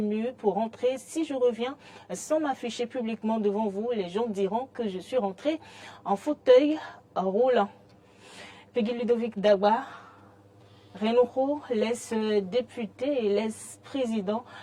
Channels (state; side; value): identical; both; correlation 1.00